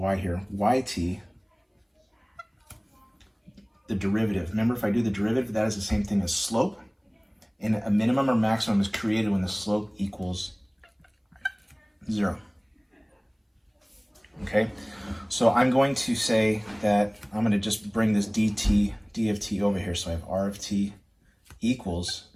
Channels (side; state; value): both; identical; correlation 1.00